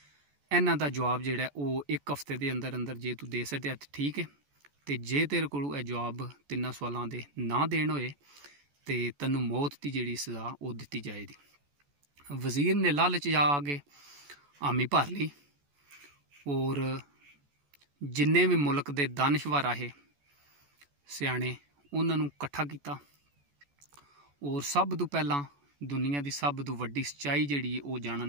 इन्हां दा जवाब जिहड़ा वो 1 हफ्ते के अंदर अंदर जे तू दे सकिया तो ठीक है, तो जे तेरे कोलों यह जवाब 3 सवालों के ना देन होए तो तैनू मौत की जिहड़ी सज़ा वो दी जाएगी। वज़ीर ने लालच आके हामी भर ली और जिन्ने भी मुल्क के दानशवर आहे सियाणे उन्होंने कट्ठा किया और सब तो पहला दुनिया की सब तो वड्डी सच्चाई जिहड़ी वो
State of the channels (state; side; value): late; left; 14 ms